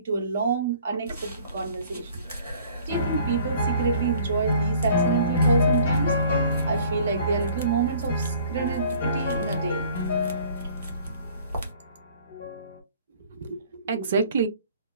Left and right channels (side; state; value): both; inverted; correlation -0.54